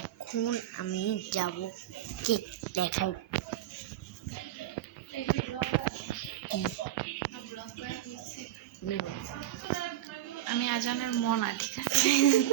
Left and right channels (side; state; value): left; quieter; 13.1 dB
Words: আমি যাব কেক দেখাই। আমি আজানের মন, ঠিক আছে?